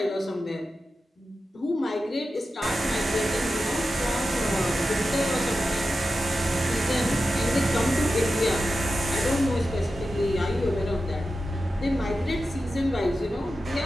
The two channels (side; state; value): both; normal; correlation 0.92